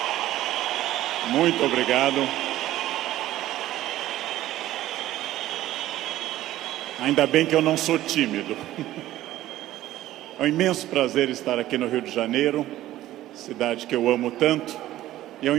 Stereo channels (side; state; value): left; quieter; 14.5 dB